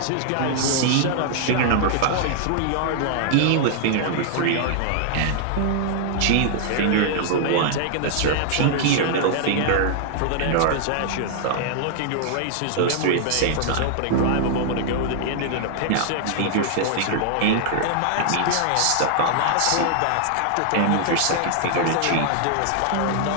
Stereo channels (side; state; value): both; different; correlation -0.01